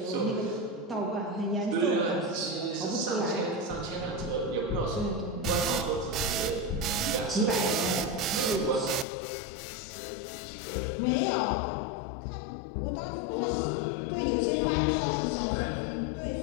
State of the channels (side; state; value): right; drops out; at 9.1 s